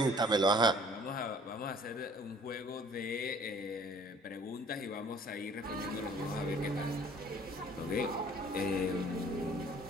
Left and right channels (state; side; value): normal; both; correlation 0.54